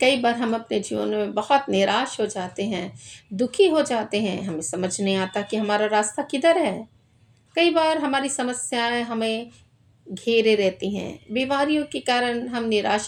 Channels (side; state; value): both; identical; correlation 1.00